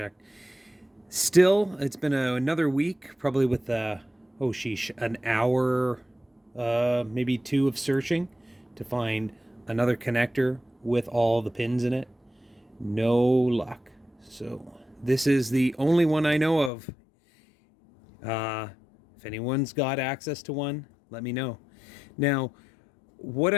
Still, it's been another week, probably with oh sheesh, an hour, maybe two of searching to find another connector with all the pins in it. No luck. So, this is the only one I know of. If anyone's got access to one, let me know. Now, what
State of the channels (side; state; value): right; drops out; at 16.7 s